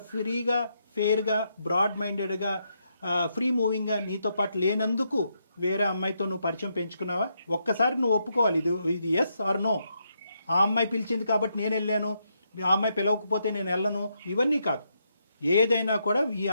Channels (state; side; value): inverted; both; correlation -0.79